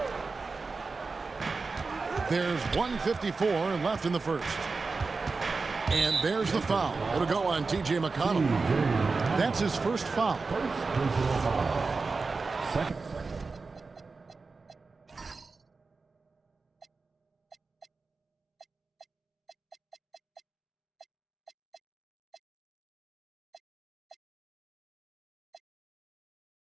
There's 1:54 left in the first. And there's the foul. It'll go on T.J. McConnell. That's his first foul. Second.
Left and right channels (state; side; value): quieter; left; 4.2 dB